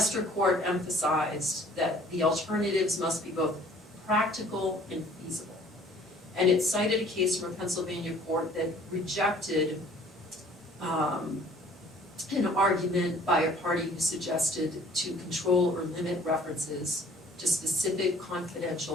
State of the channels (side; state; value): both; normal; correlation 0.54